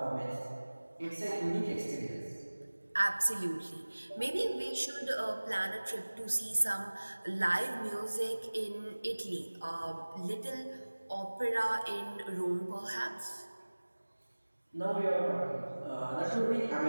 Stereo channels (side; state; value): both; inverted; correlation -1.00